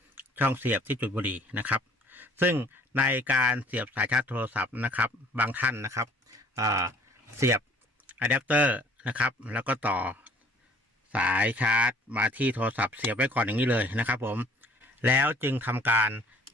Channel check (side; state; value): both; normal; correlation 0.55